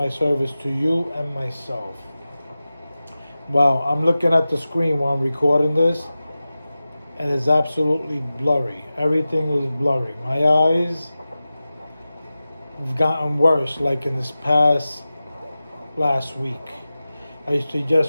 service to you and myself. Wow, I'm looking at the screen while I'm recording this and it's absolutely blurry. Everything is blurry. My eyes have gotten worse like in this last week. I used to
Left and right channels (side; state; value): both; inverted; correlation -0.95